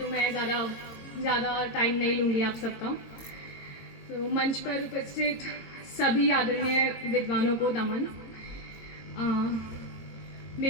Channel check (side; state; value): right; late; 22 ms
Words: मैं ज़्यादा टाइम नहीं लूँगी आप सबका। तो मंच पर उपस्थित सभी आदरणीय विद्वानों को नमन।